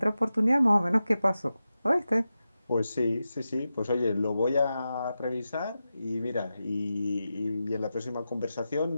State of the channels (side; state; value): both; inverted; correlation -0.92